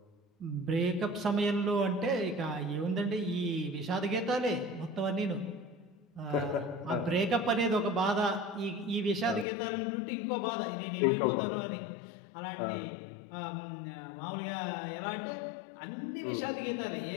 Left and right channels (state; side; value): drops out; right; at 9.5 s